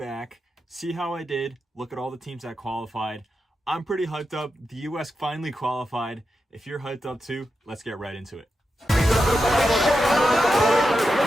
see how I did, look at all the teams that qualified. I'm pretty hyped up. The US finally qualified. If you're hyped up too, let's get right into it.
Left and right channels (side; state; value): both; normal; correlation 0.89